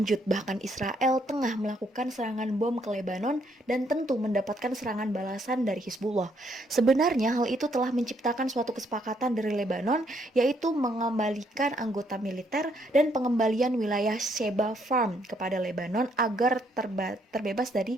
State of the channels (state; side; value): normal; both; correlation 0.71